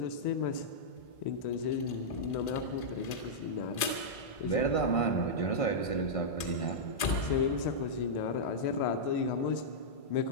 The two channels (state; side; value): late; right; 1.8 ms